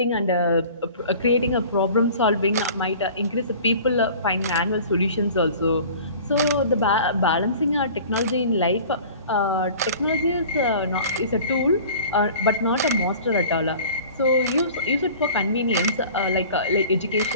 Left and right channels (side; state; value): both; inverted; correlation -0.44